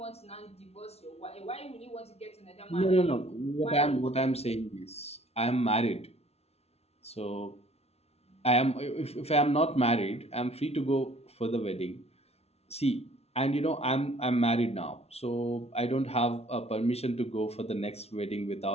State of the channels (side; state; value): right; late; 0.30 ms